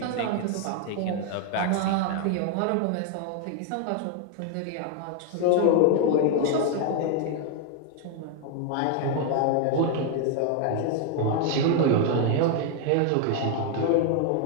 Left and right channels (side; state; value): both; different; correlation 0.01